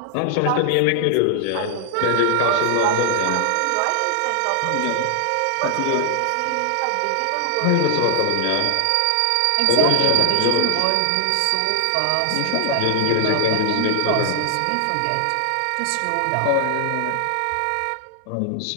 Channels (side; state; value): both; different; correlation 0.00